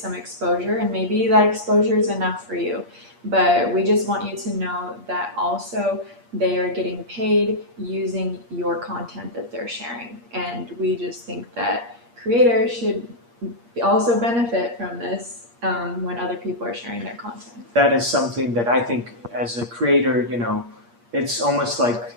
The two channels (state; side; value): late; left; 8.5 ms